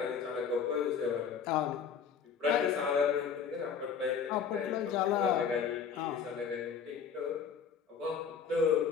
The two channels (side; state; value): right; quieter; 6.7 dB